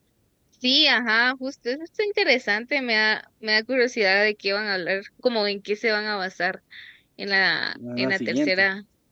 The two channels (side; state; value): both; identical; correlation 1.00